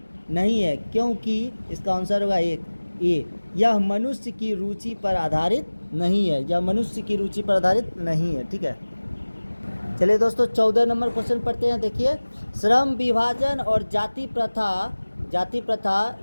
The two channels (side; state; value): both; inverted; correlation -1.00